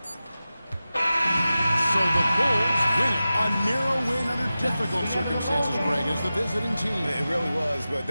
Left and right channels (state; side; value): inverted; both; correlation -0.94